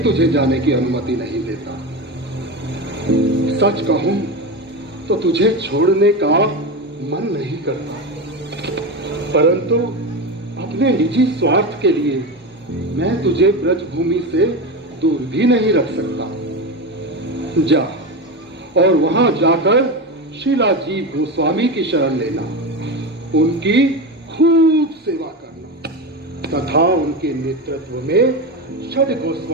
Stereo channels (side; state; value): both; normal; correlation 0.20